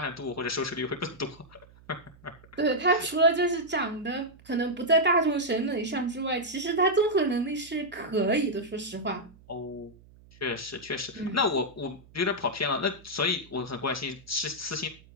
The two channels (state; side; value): noise; right; hum, 24 dB below the sound